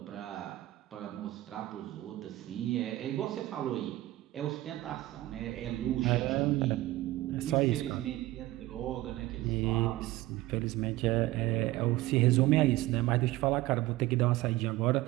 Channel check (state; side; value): quieter; left; 17.3 dB